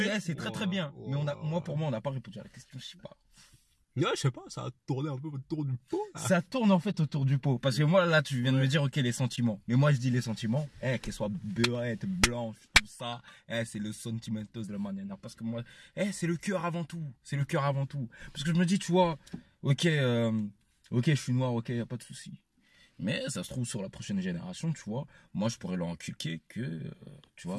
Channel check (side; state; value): both; identical; correlation 1.00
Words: c'est très bien. Mais pour moi, on n'a pas répondu à la question, je sais pas. Ouais, je sais pas, ça a tourné un peu autour du pot. Là. Ça tourne en fait autour du pot. Parce que moi, là, tu viens de me dire, ok, les sentiments. Mais moi, je dis les sentiments, qu'elles soient beurrettes, blanches, tout ça, c'est le sentimentos de la manière. Parce que moi, c'est le cœur avant tout. C'est le cœur avant tout. Parce que je me dis, tu vois, ok, je suis noir, ok, y a pas de souci. Mais ça se trouve sur la prochaine génération, tu vois, moi, je pourrais leur inculquer que, tu vois.